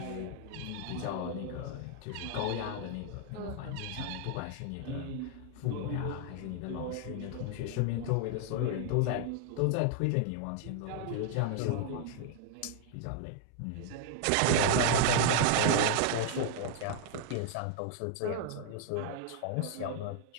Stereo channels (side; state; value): both; different; correlation 0.00